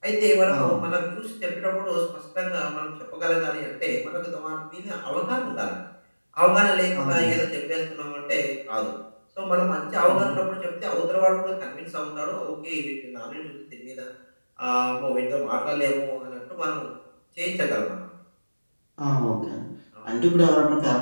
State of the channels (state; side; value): inverted; both; correlation -1.00